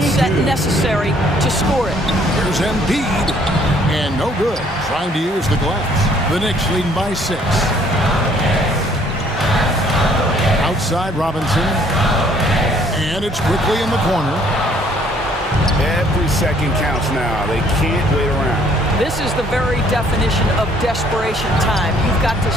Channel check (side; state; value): both; normal; correlation 0.62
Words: set necessary to score it. Here's Embiid. And no good. Trying to use the glass. The Knicks leading by 6. Outside Robinson. And it's quickly in the corner. Every second counts now. They can't wait around. This is the very definition of desperation time. You've got to